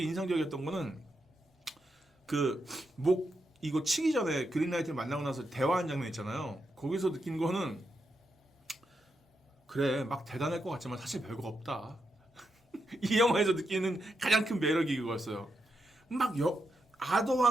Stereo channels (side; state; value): both; normal; correlation 0.84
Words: 인상적이었던 거는 이거 치기 전에 그린라이트를 만나고 나서 대화하는 장면 있잖아요. 거기서 느낀 거는 그래 막 대단할 것 같지만 사실 별거 없다. 이 영화에서 느끼는 가장 큰 매력이 그거였어요.